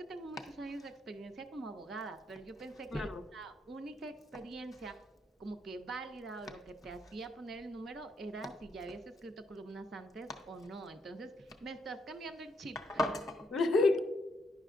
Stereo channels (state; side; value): normal; both; correlation 0.75